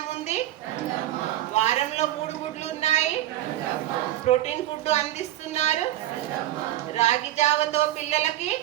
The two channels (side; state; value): left; quieter; 14.1 dB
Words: ఉంది. వారంలో 3 గుడ్లు ఉన్నాయి. ప్రోటీన్ ఫుడ్ అందిస్తున్నారు. రాగి జావతో పిల్లలకి